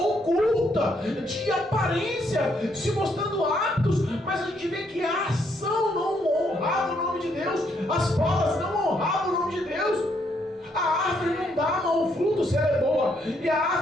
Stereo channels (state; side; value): normal; both; correlation 0.73